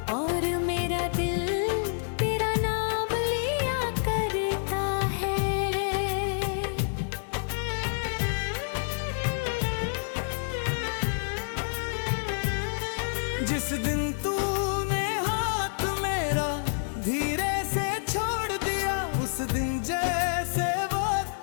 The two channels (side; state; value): right; silent; digital silence